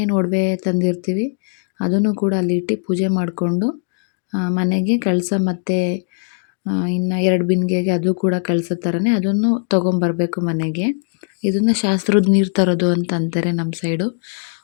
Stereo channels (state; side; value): silent; right; 66 dB below the other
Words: ಒಡವೆ ತಂದಿರ್ತೀವಿ ಅದನ್ನು ಕೂಡ ಅಲ್ಲಿಟ್ಟು ಪೂಜೆ ಮಾಡಿಕೊಂಡು ಮನೆಗೆ ಕಳಸ ಮತ್ತು ಇನ್ನು 2 ಬಿಂದಿಗೆಗೆ ಅದು ಕೂಡ ಕಳಸ ಥರನೇ ಅದನ್ನು ತೊಗೊಂಬರ್ಬೇಕು ಮನೆಗೆ. ಇದನ್ನು ಶಾಸ್ತ್ರದ ನೀರು ತರೋದು ಅಂತ ಅಂತಾರೆ ನಮ್ಮ ಸೈಡು.